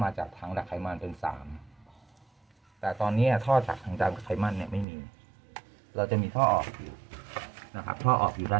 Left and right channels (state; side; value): drops out; left; at 4.9 s